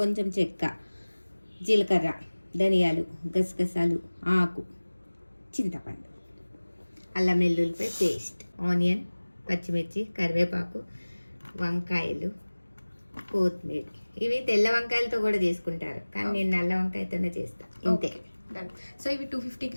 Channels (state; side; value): inverted; both; correlation -1.00